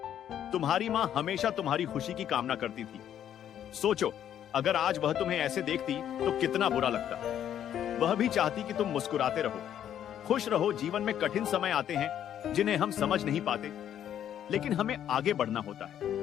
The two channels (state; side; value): quieter; right; 10.2 dB